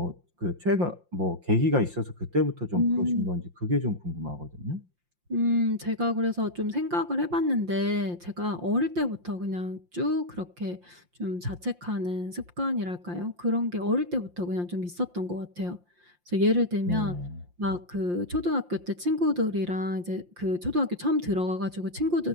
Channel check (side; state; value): left; late; 5.7 ms